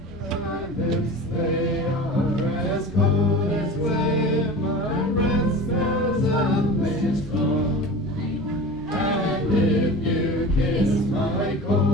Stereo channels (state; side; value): normal; both; correlation 0.34